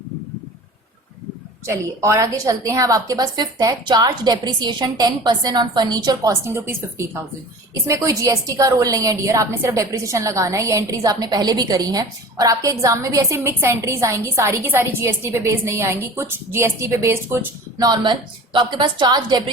चलिए और आगे चलते हैं। अब आपके पास फिफ्थ है charge depreciation 10% on furniture costing ₹50,000। इसमें कोई जीएसटी का रोल नहीं है डियर, आपने सिर्फ डेप्रिसिएशन लगाना है। ये एंट्रीज आपने पहले भी करी हैं, और आपके एग्जाम में भी ऐसे मिक्स एंट्रीज आएंगी, सारी की सारी जीएसटी पे बेस्ड नहीं आएंगी, कुछ जीएसटी पे बेस्ड कुछ नॉर्मल। तो आपके पास चार्ज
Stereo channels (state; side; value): normal; both; correlation 0.39